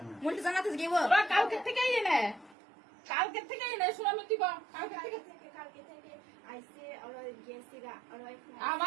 মুলটি জানাতে গিয়ে ওরা কালকে থেকে এনে শুনামি দিব কালকে থেকে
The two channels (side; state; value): left; drops out; at 2.6 s